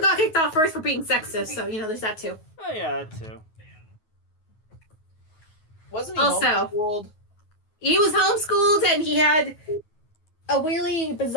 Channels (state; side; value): late; right; 9.4 ms